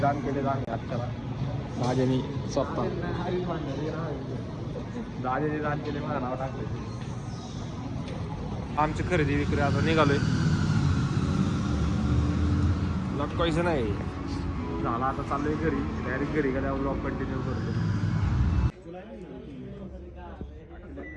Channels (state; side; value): identical; both; correlation 1.00